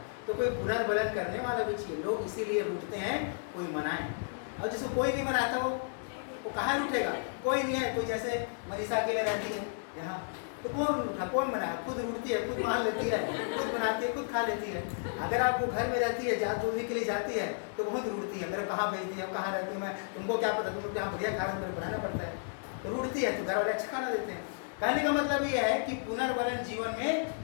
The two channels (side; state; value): right; silent; digital silence